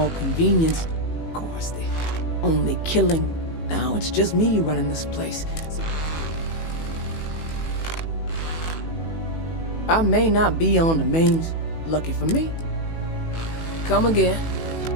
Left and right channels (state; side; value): late; right; 18 ms